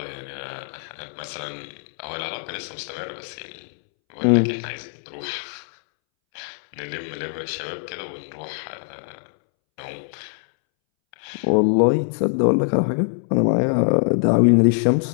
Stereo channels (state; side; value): silent; right; 63 dB below the other